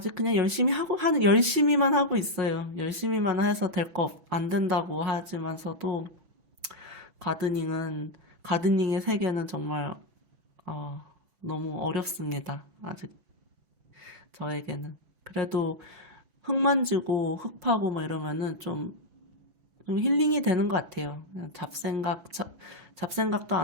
그냥 열심히만 하고 있어요. 열심히만 해서 안 된다고 하지만서도, 가드닝은, 가드닝의 세계는 정말, 어, 너무 어렵습니다. 아직 저에게는. 그래도 흙 만지고 흙 파고 뭐 이러면은 좀 힐링이 되는 것 같아요. 그냥 잡생각도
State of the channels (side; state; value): left; late; 5.9 ms